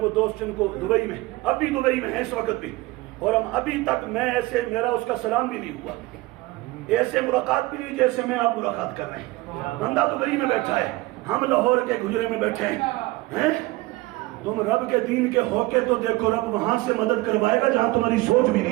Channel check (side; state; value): left; quieter; 20.5 dB